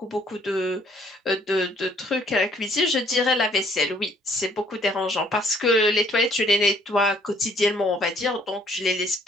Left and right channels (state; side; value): normal; both; correlation 0.62